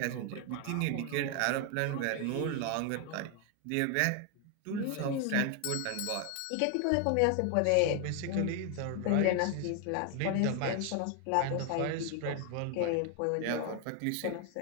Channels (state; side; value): different; both; correlation 0.00